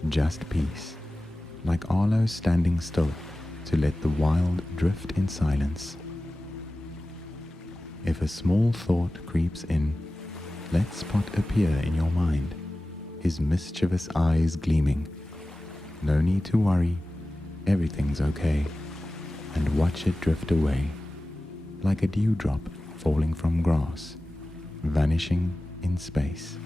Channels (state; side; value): normal; both; correlation 0.96